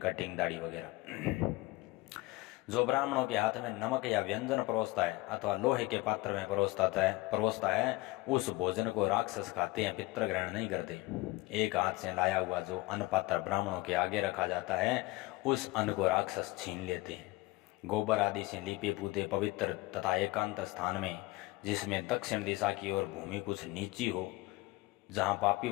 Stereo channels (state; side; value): quieter; right; 20.9 dB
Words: कटिंग दाढ़ी वगैरह। जो ब्राह्मणों के हाथ में नमक या व्यंजन परोसता है अथवा लोहे के पात्र में परोसता है, उस भोजन को राक्षस खाते हैं, पितर ग्रहण नहीं करते। एक हाथ से लाया हुआ जो अन्न पात्र ब्राह्मणों के आगे रखा जाता है, उस अन्न को राक्षस छीन लेते हैं। गोबर आदि से लीपे पूते पवित्र तथा एकांत स्थान में, जिसमें दक्षिण दिशा की ओर भूमि कुछ नीची हो, जहाँ पापी